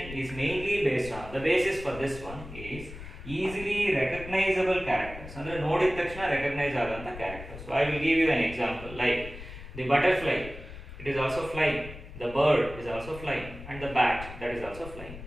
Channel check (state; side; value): noise; left; rumble, 13 dB below the sound